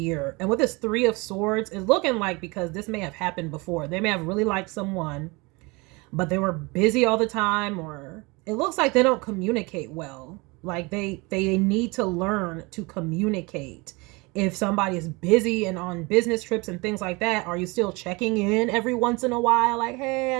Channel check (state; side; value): quieter; left; 26.1 dB